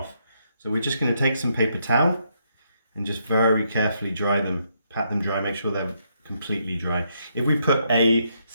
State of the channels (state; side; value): inverted; both; correlation -0.76